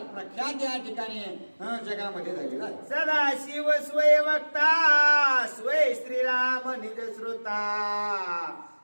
प्रख्यात या ठिकाणी जगामध्ये झालेलं आहे. सदा शिव स्वय वक्ता स्वय श्रीराम निज श्रोता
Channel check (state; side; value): inverted; both; correlation -1.00